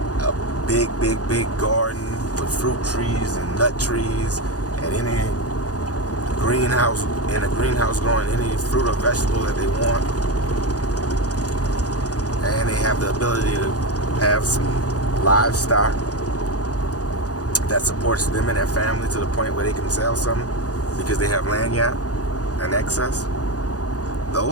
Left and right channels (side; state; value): right; late; 0.67 ms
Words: a big garden with fruit trees and nut trees, and any greenhouse, in a greenhouse growing any fruit or vegetable that they want, and they have the ability to have some livestock that supports them and their family to the point where they can sell something because they have land in excess.